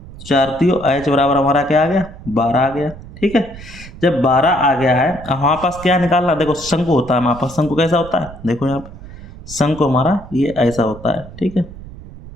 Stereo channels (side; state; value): right; noise; rumble, 16 dB below the sound